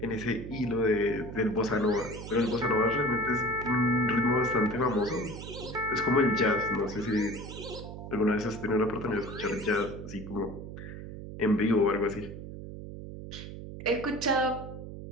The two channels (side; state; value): right; noise; hum, 10 dB below the sound